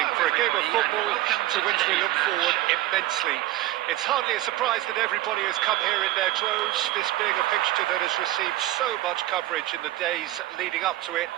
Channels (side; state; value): left; quieter; 15.9 dB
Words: for a game of football to which we look forward immensely. It's hardly a surprise that everybody has come here in their droves, this being a fixture that has received so much coverage in the days leading up to it.